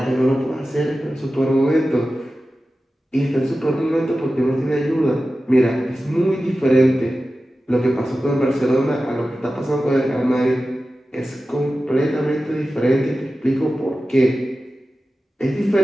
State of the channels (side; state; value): both; normal; correlation 0.94